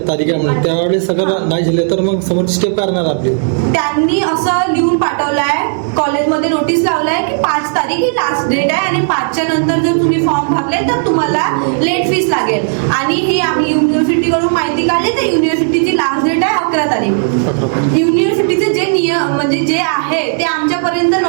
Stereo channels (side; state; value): left; silent; digital silence